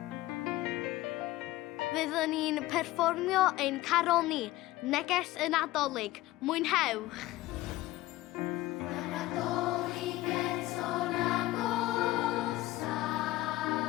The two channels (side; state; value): right; quieter; 17.2 dB